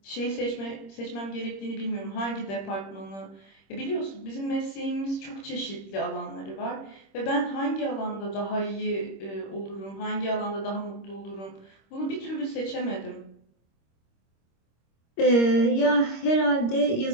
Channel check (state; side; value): late; right; 26 ms